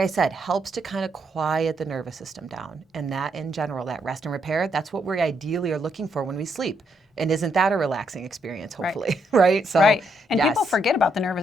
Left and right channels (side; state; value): both; normal; correlation 0.76